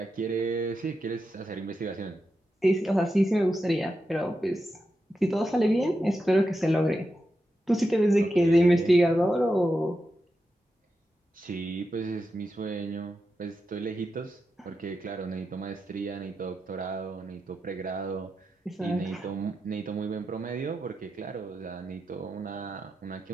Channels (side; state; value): both; normal; correlation 0.88